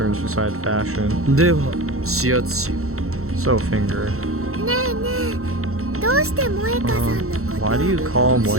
besides fashion. では指圧しよ So finger. ねえねえ、どうして萌香さんのこと Why do you call 指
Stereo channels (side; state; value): left; late; 0.63 ms